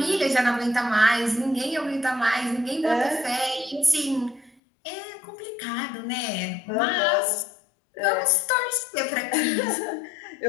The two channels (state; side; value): drops out; right; at 4.5 s